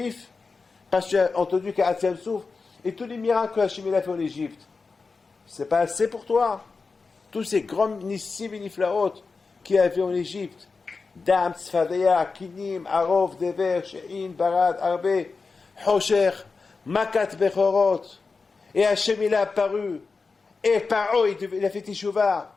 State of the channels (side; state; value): right; quieter; 4.4 dB